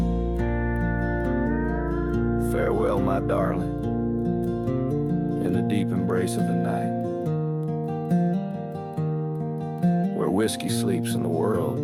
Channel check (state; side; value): identical; both; correlation 1.00